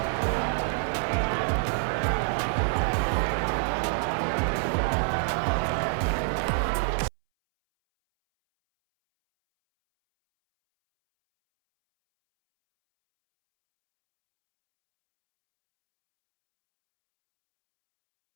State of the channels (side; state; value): left; silent; 60 dB below the other